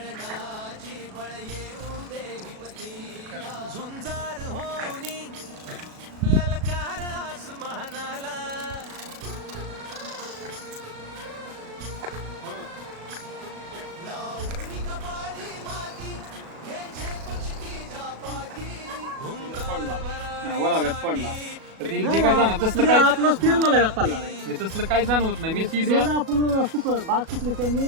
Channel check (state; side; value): late; left; 37 ms